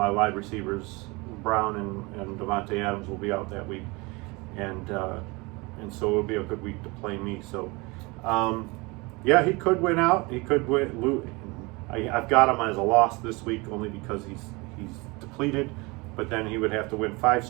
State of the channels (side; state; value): left; quieter; 25.8 dB